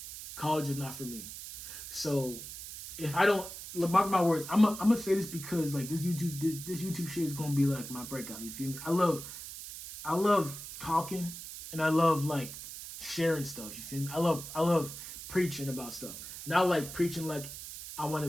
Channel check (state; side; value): noise; right; hiss, 11 dB below the sound